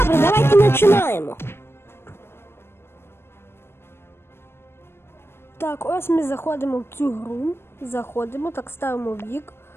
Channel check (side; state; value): right; late; 0.12 ms